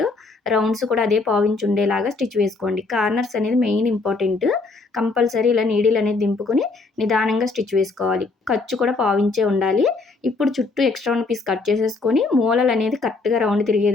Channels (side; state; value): right; quieter; 3.8 dB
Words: రౌండ్స్ కూడా అదే పావించ్ ఉండేలాగా స్టిచ్ వేసుకోండి. కార్నర్స్ అనేది మెయిన్ ఇంపార్టెంట్. కంపల్సరీ ఇలా నీడిల్ అనేది దింపుకొని నిదానంగా స్టిచ్ వేసుకోవాలి. ఖర్చు కూడా పావించే ఉండాలి. ఇప్పుడు చుట్టూ ఎక్స్ట్రా ఉన్న పీస్ కట్ చేసేసుకొని మూలలనేది కరెక్ట్‌గా రౌండ్ తిరిగే